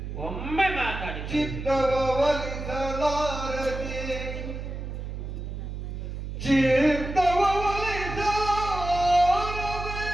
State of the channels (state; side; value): noise; right; hum, 7 dB below the sound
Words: ಒಮ್ಮೆ ಮಾತಾಡಿ. ಚಿತ್ತವ ಒಲಿಸಲಾರದೆ, ಚಿತ್ತವ ಒಲಿಸಲಾರದೆ